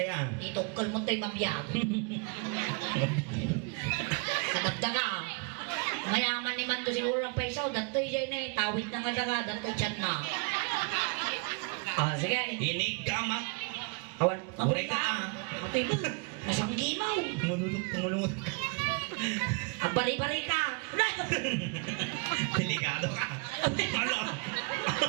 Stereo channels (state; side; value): quieter; left; 34.3 dB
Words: Dito kalmon tayo mabiyag. Kadagdaga. Mayaman ni Mando siguro ang paisaw. Datoy dyan eh. Tawid na nga daga. Datoy chat na. Sige. Inig gamak. Awan. Ore ka. Atoy mo. Masanggi mo. Tumulungot. Ang bari-bari ka. Delikado ka. Ano?